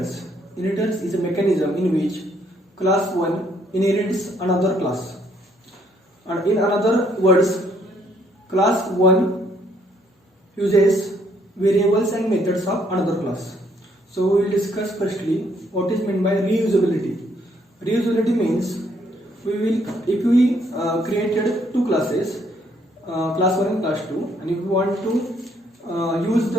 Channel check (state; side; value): normal; both; correlation 0.68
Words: Inheritance is a mechanism in which class 1 inherits another class. And in other words, class 1 uses variables and methods of another class. So we will discuss firstly what is meant by reusability. Reusability means if we created two classes, class 1 and class 2, and if we want to use